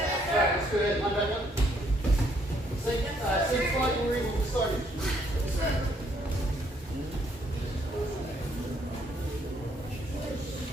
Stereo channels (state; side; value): normal; both; correlation 0.69